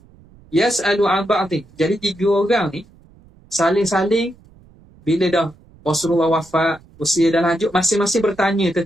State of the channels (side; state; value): right; noise; rumble, 27 dB below the sound